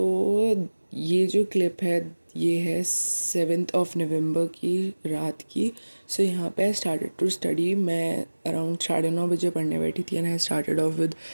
ये जो clip है ये है 7 नवंबर की रात की. सो यहाँ पे आई स्टार्टेड टू स्टडी. मैं अराउंड 9:30 बजे पढ़ने बैठी थी and I started off with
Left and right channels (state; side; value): inverted; both; correlation -1.00